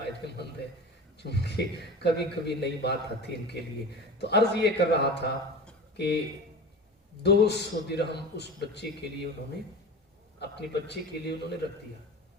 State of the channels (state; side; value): normal; both; correlation 0.32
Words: مند ہے، چونکہ کبھی کبھی نئی بات آتی ان کے لیے۔ تو عرض یہ کر رہا تھا کہ 200 درہم اس بچے کے لیے انہوں نے، اپنے بچے کے لیے انہوں نے رکھ دیا